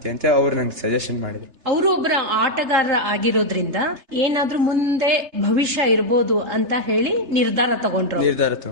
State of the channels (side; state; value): left; late; 3.3 ms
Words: ಅಂತ ಅವ್ರು ನಂಗೆ ಸಜೆಷನ್ ಮಾಡಿದ್ರು. ಅವರು ಒಬ್ಬರ ಆಟಗಾರ ಆಗಿರೋದ್ರಿಂದ ಏನಾದ್ರೂ ಮುಂದೆ ಭವಿಷ್ಯ ಇರ್ಬೋದು ಅಂತ ಹೇಳಿ ನಿರ್ಧಾರ ತಗೊಂಡ್ರು.